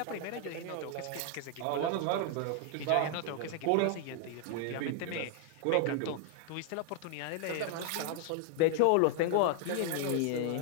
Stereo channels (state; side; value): different; both; correlation 0.00